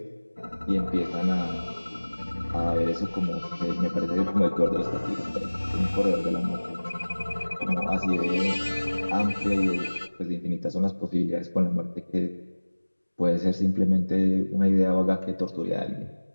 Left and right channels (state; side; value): inverted; both; correlation -1.00